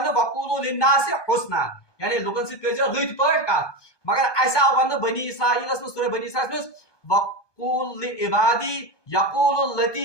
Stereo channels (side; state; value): right; late; 1.2 ms